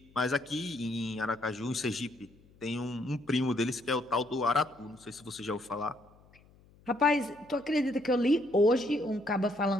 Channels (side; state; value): left; noise; hum, 28 dB below the sound